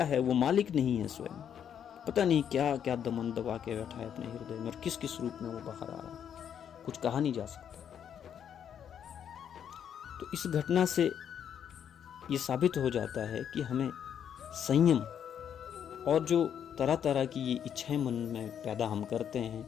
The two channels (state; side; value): quieter; right; 8.8 dB